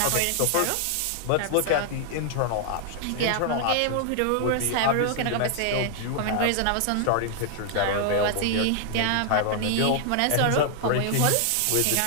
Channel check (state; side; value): different; both; correlation 0.00